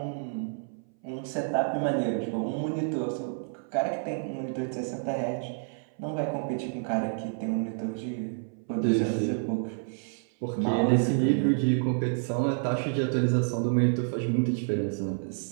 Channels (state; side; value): silent; left; 59 dB below the other